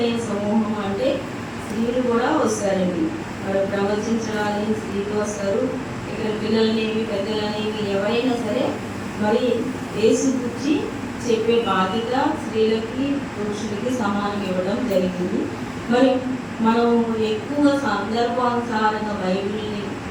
సమూహం అంటే స్త్రీలు కూడా వస్తారండి. మరి ప్రవచించడానికి స్త్రీలు వస్తారు. ఇక్కడ పిల్లలనేవి పెద్దలనేవి ఎవరైనా సరే మరి యేసు గురించి చెప్పే బాధ్యత స్త్రీలకి పురుషులకి సమానం ఇవ్వడం జరిగింది. మరి మనం ఎక్కువ సందర్భానుసారంగా బైబిల్ని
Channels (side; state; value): both; identical; correlation 1.00